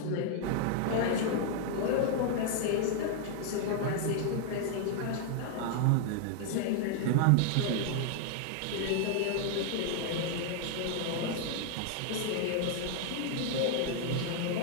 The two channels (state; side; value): different; both; correlation 0.00